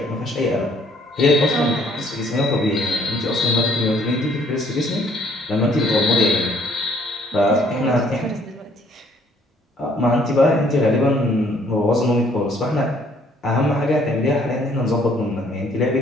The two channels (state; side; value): normal; both; correlation 0.63